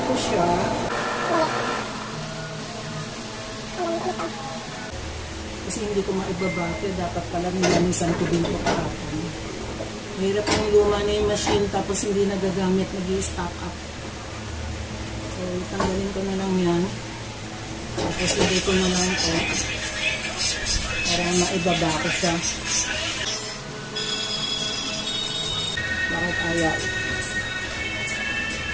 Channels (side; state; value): both; identical; correlation 1.00